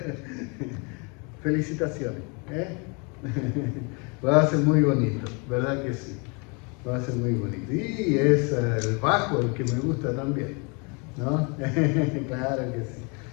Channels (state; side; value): quieter; right; 32.6 dB